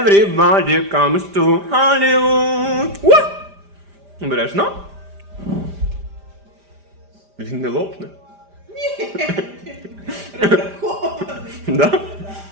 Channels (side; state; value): left; late; 5.0 ms